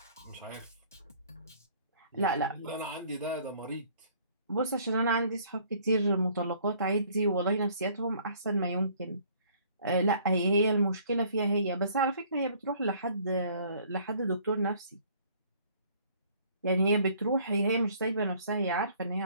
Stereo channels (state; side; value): inverted; both; correlation -0.58